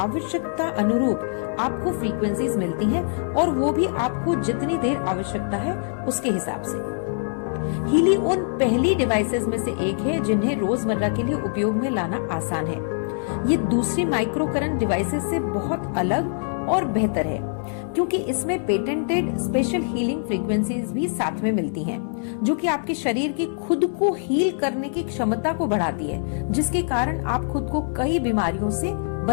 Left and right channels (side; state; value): right; silent; digital silence